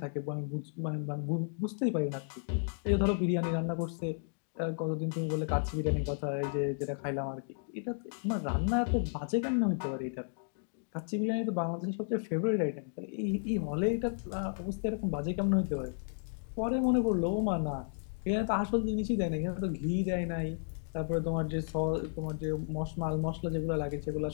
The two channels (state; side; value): silent; right; digital silence